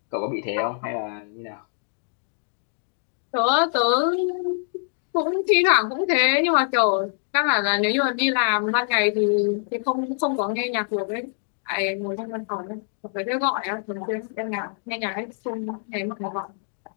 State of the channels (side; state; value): right; silent; 62 dB below the other